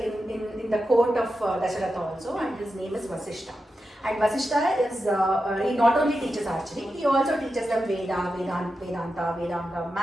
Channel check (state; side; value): normal; both; correlation 0.90